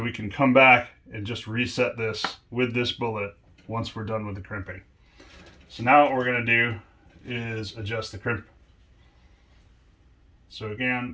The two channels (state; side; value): identical; both; correlation 1.00